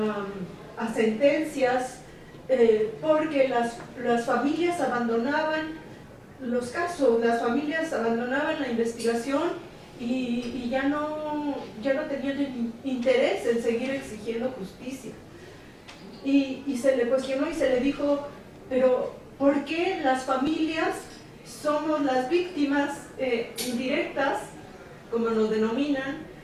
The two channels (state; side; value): identical; both; correlation 1.00